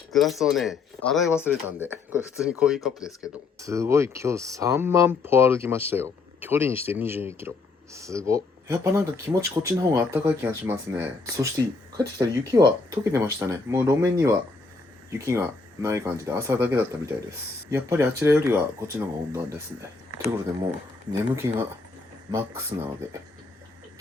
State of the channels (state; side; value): quieter; right; 4.0 dB